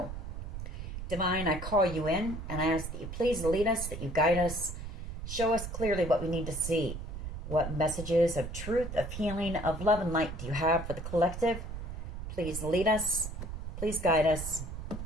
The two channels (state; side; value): noise; right; rumble, 7 dB below the sound